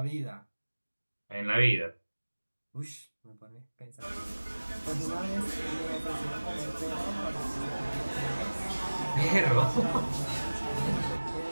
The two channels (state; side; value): inverted; both; correlation -1.00